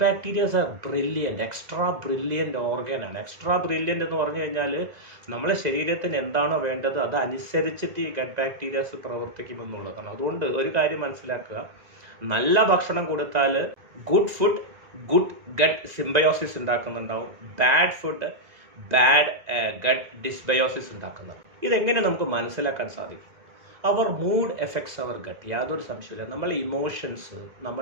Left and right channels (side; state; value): left; late; 2.0 ms